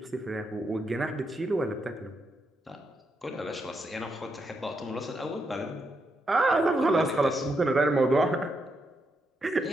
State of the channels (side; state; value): both; normal; correlation 0.81